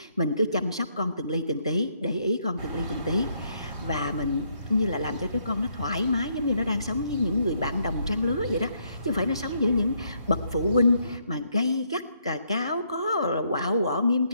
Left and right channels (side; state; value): both; inverted; correlation -0.73